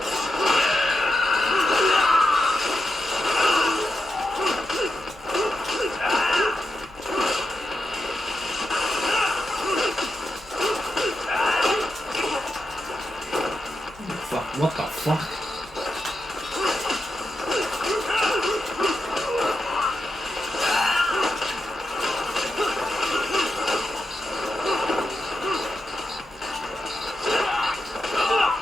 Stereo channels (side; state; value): both; normal; correlation 0.88